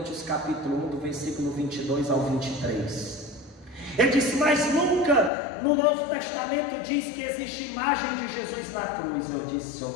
capítulo 1, do versículo 22 ao 23. Ele disse: mas nunca no Novo Testamento diz que existe imagem de Jesus na cruz. Eu disse: o senhor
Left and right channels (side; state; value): right; drops out; at 5.3 s